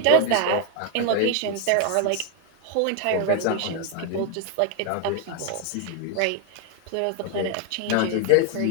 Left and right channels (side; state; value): both; different; correlation 0.00